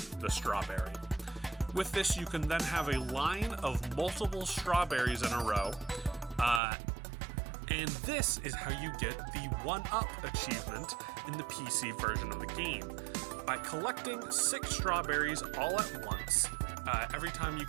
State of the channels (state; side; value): drops out; left; at 6.6 s